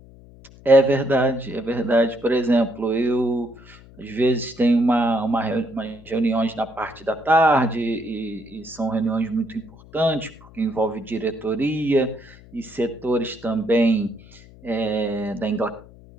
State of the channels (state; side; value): noise; left; hum, 22 dB below the sound